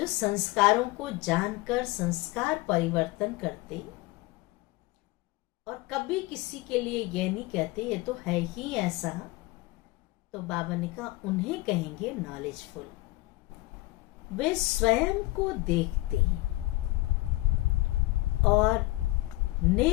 संस्कारों को जानकर संस्कार परिवर्तन करते और कभी किसी के लिए यह नहीं कहते ये तो है ही ऐसा, तो बाबा ने कहा उन्हें कहेंगे नॉलेजफुल। वे स्वयं को देखते और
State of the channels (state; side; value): quieter; right; 20.0 dB